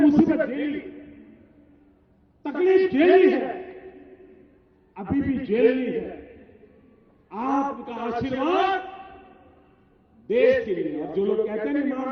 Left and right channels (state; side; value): identical; both; correlation 1.00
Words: झेली, तकलीफ झेली है, अभी भी झेलनी है। आपका आशीर्वाद देश के लिए, और जो लोग कहते हैं